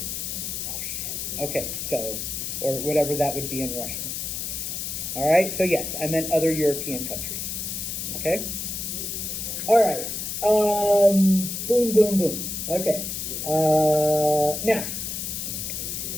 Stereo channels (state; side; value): noise; left; hiss, 4 dB below the sound